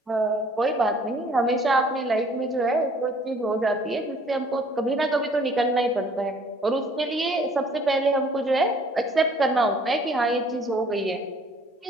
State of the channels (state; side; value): normal; both; correlation 0.56